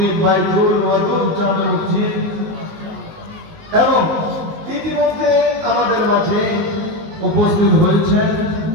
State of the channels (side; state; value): left; late; 19 ms